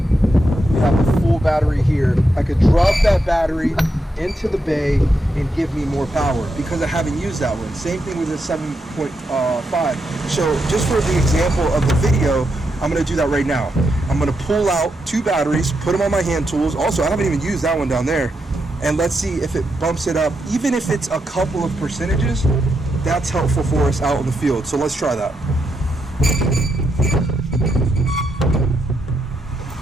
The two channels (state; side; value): normal; both; correlation 0.83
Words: we have a full battery here. I could drop that battery into the bay and give me more power because I haven't used that one. Same thing with the 7.5. So just for the example of the video, I'm going to do that right now. I'm going to pull out 2 batteries, put them on my hand tools. Also, I haven't even used that one down there. And let's see if it bumps it up. Even if it's a couple of percentages, that's helpful for us out in the field. So let's try that.